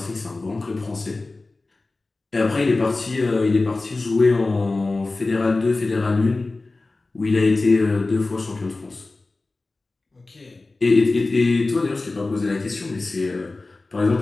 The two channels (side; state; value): right; quieter; 3.3 dB